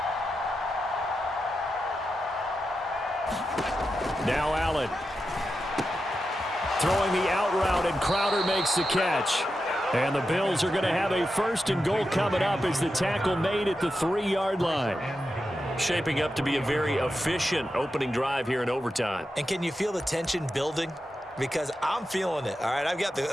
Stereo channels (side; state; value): both; normal; correlation 0.89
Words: Now Allen. Throwing the out route, and Crowder makes the catch. And the Bills are going to have a first and goal coming up as the tackle made at the 3-yard line. Shaping up to be a very efficient opening drive here in overtime. And can you feel the tension building? Because I'm feeling it. All right, I've got